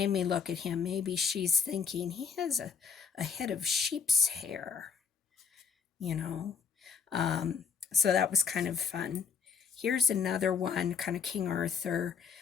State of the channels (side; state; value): right; quieter; 6.3 dB